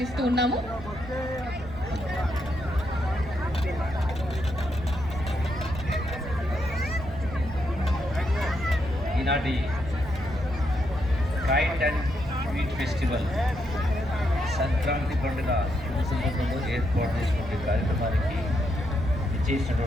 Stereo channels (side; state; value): right; noise; hum, 14 dB below the sound